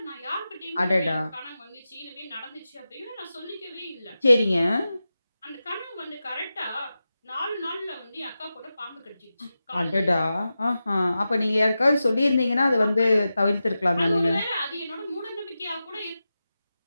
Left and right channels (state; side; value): inverted; both; correlation -0.92